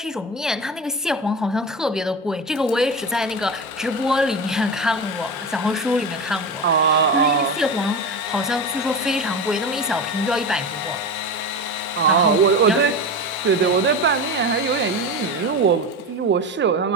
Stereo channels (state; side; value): normal; both; correlation 0.24